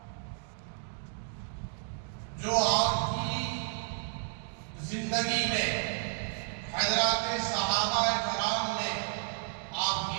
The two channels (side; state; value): left; silent; 56 dB below the other